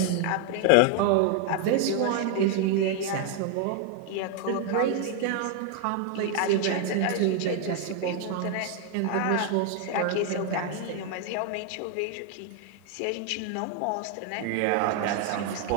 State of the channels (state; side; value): different; both; correlation 0.00